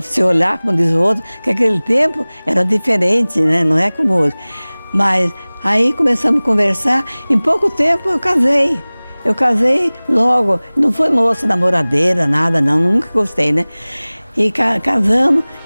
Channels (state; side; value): inverted; both; correlation -1.00